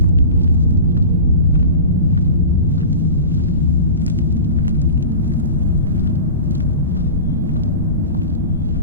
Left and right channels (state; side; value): inverted; both; correlation -0.34